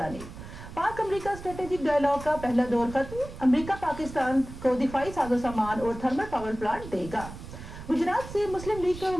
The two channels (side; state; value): right; noise; rumble, 13 dB below the sound